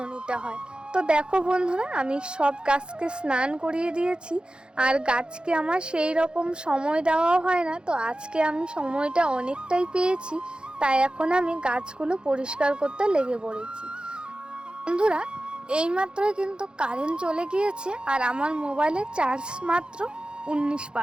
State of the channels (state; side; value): late; left; 0.051 ms